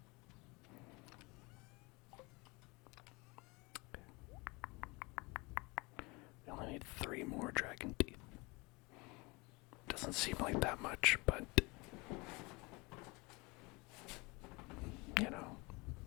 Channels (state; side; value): quieter; right; 26.2 dB